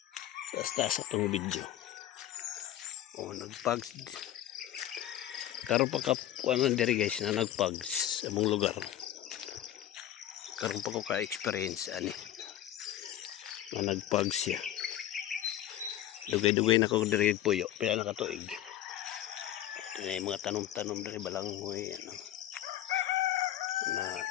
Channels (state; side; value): quieter; right; 12.3 dB